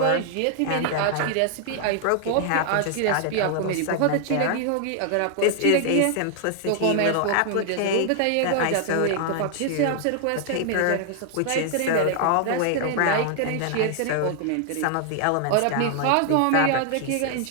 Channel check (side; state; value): both; different; correlation 0.00